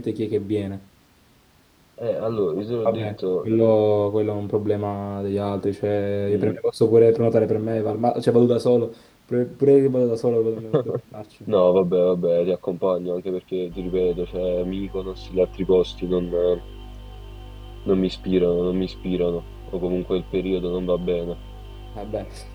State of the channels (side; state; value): both; identical; correlation 1.00